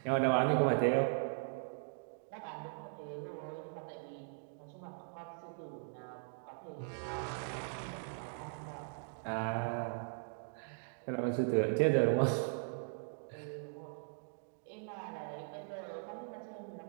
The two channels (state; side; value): silent; left; digital silence